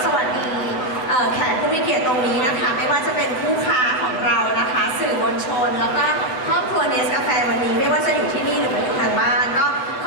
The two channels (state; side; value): late; right; 7.8 ms